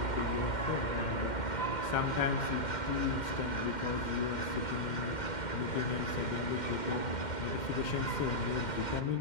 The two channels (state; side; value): late; right; 2.1 ms